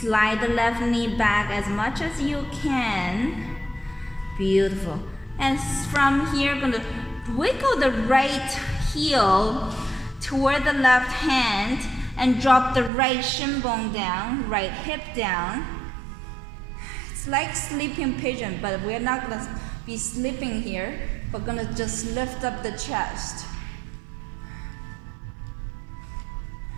the left knee back as much as you can. Beautiful. And from here, I'm gonna wiggle the right heel toward the left hand and drop the right shin bone down, right hip down. It's like sleeping pigeon, but we're not gonna be sleeping here. We're gonna just lift up the chest.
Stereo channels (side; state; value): left; drops out; at 12.9 s